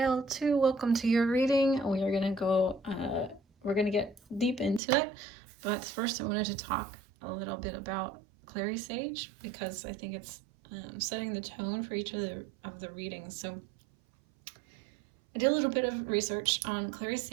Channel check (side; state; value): left; drops out; at 4.8 s